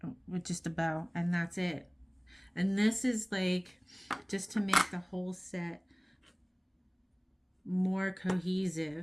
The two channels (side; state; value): both; identical; correlation 1.00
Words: with just a bow, and that's it. And this is like just to make the whole set more